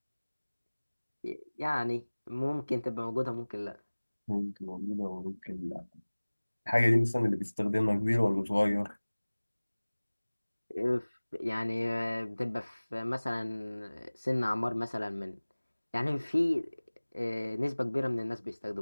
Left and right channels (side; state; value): both; inverted; correlation -1.00